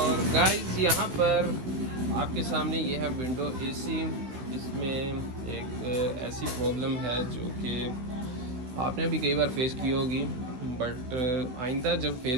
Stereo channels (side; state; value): left; late; 16 ms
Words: गाइस यहाँ पर आपके सामने ये है विंडो एसी। इसमें एक ऐसी प्रॉब्लम है जो कि आपने भी कई बार फेस की होगी, बट आइंदा जब